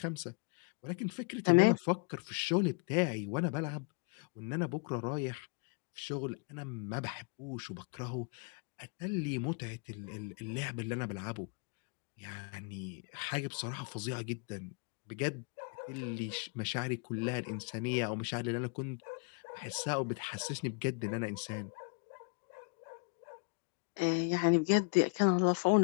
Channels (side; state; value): right; quieter; 32.7 dB